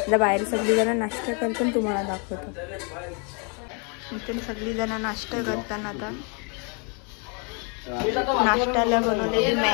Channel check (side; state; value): right; quieter; 36.1 dB